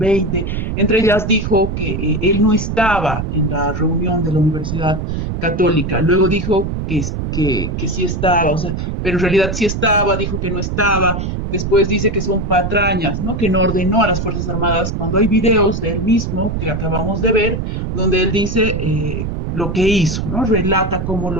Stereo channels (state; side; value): noise; right; rumble, 3 dB below the sound